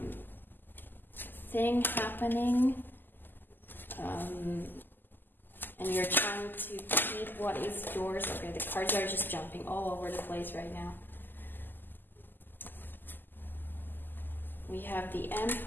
thing happening, and you're trying to keep what is yours. Okay, the cards are just jumping all over the place right now. We have the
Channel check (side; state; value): right; late; 0.091 ms